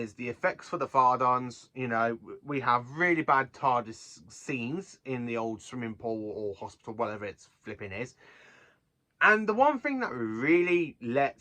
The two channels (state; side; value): identical; both; correlation 1.00